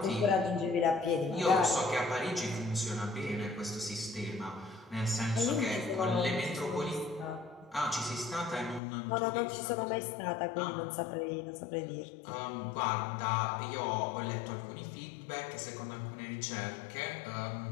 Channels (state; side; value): drops out; right; at 8.8 s